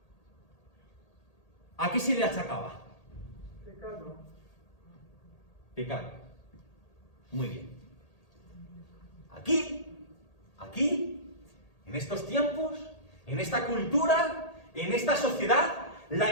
¿a qué se le achacaba? Pecado. Pecado. Muy bien. Aquí, en estos tiempos, en esta cultura, en esta sociedad,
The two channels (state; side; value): late; right; 1.8 ms